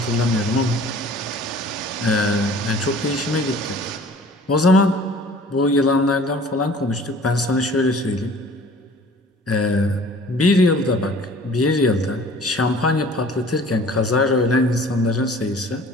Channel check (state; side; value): normal; both; correlation 0.49